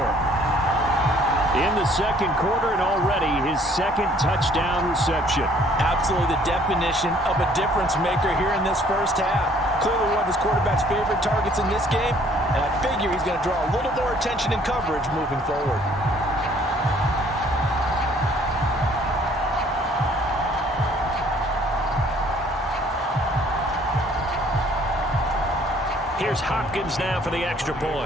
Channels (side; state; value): both; normal; correlation 0.59